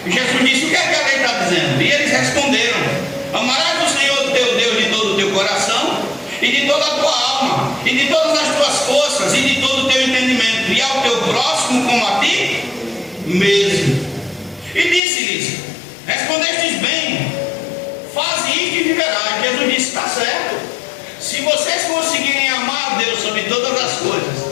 Jesus disse: o que é que a lei está dizendo? E eles responderam: amarás o Senhor teu Deus de todo o teu coração, e de toda a tua alma, e de todas as tuas forças, e de todo o teu entendimento, e ao teu próximo como a ti mesmo. E disse-lhes: respondestes bem, faze isto e viverás. Jesus disse: está certo. Se vocês conseguirem amar a Deus sobre todas as coisas,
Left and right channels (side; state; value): right; drops out; at 15.0 s